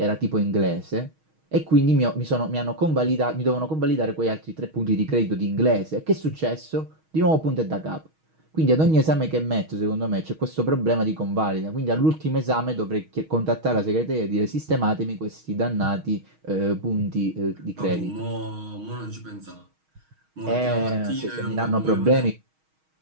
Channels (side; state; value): left; late; 6.3 ms